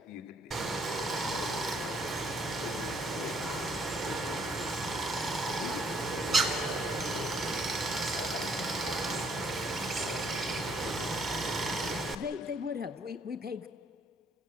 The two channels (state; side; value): normal; both; correlation 0.67